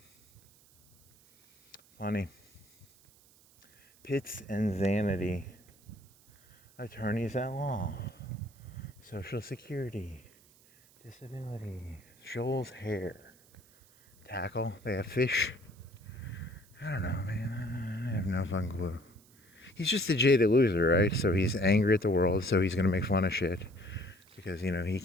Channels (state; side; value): noise; right; hiss, 28 dB below the sound